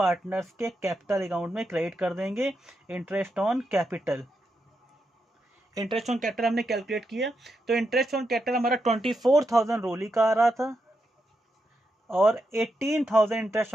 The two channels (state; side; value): normal; both; correlation 0.84